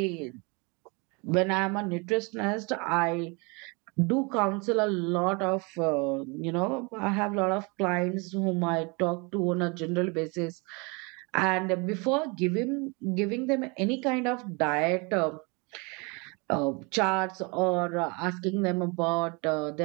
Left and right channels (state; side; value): quieter; left; 29.9 dB